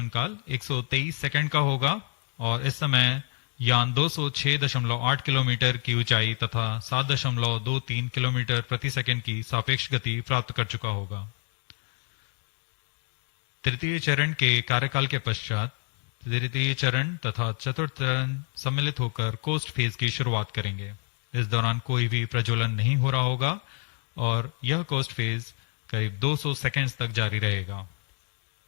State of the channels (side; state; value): right; quieter; 39.7 dB